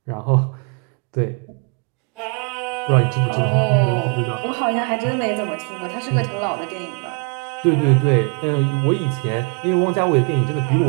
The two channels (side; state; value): left; quieter; 35.7 dB